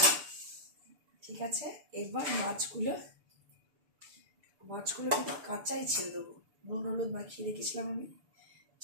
ঠিক আছে, এবার মাছগুলো কিন্তু কাঁচাই ছেড়ে দেবো, নুন হলুদ মাখিয়ে রেখেছিলাম আমি,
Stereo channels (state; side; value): late; left; 6.8 ms